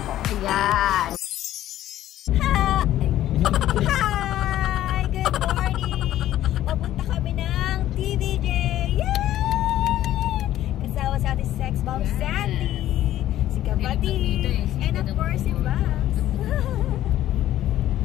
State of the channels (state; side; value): quieter; right; 13.1 dB